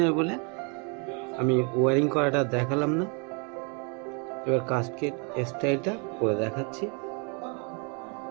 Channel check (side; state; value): left; quieter; 35.6 dB